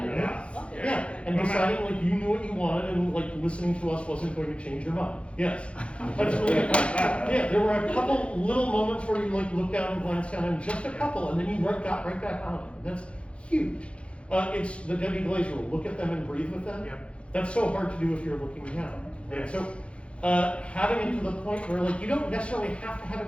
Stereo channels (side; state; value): right; late; 0.060 ms